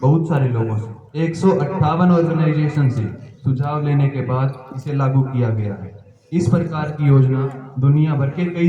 सारे लोगों से 158 ऑर्गेनाइजेशन से सुझाव लेने के बाद इसे लागू किया गया है। इस प्रकार की योजना दुनिया भर के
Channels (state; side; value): identical; both; correlation 1.00